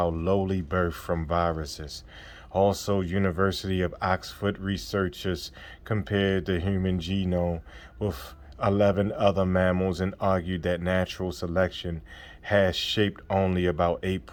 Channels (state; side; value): identical; both; correlation 1.00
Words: lowly birth from viruses. Also, University of Oxford researchers compared the human genome with 11 other mammals and argued that natural selection has shaped only about